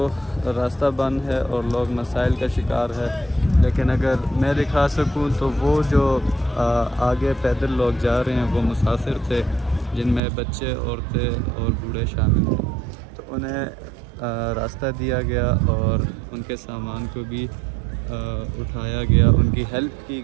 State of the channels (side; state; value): left; drops out; at 10.2 s